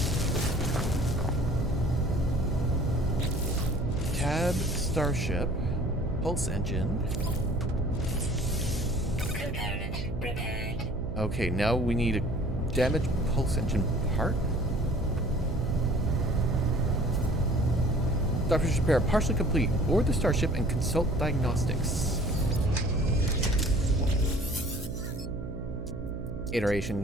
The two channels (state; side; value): noise; right; hum, 8 dB below the sound